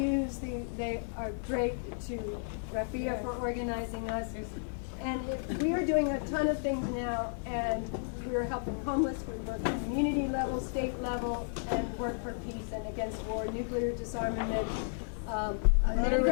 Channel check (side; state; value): right; silent; 56 dB below the other